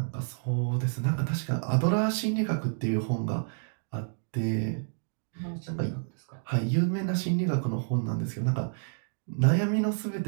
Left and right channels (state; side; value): silent; left; digital silence